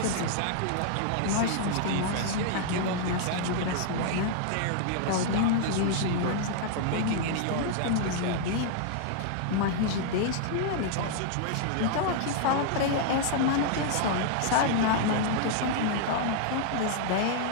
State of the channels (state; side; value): different; both; correlation -0.01